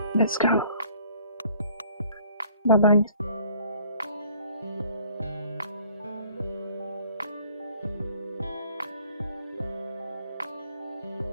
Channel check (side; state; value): both; inverted; correlation -0.57